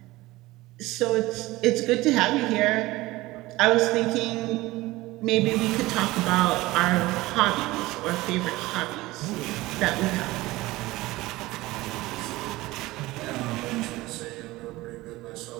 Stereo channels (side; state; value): left; quieter; 19.2 dB